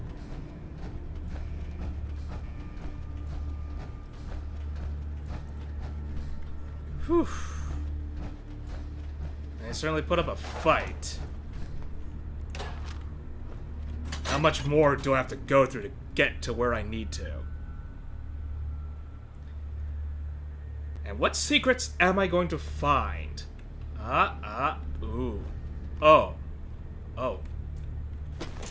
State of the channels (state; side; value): identical; both; correlation 1.00